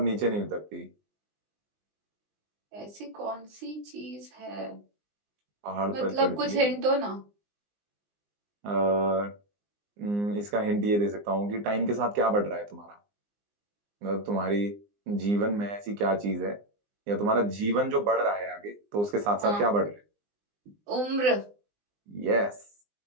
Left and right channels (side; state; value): left; late; 20 ms